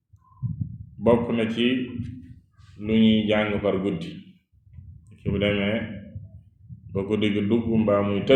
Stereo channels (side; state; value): both; identical; correlation 1.00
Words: bokk na ci lu ñuy jàng par guddi. ki bu demee ba guddi gi dugg mbaa muy